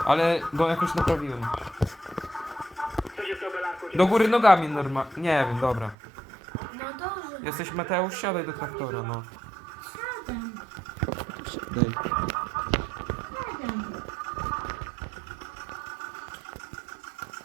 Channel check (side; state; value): left; drops out; at 6.0 s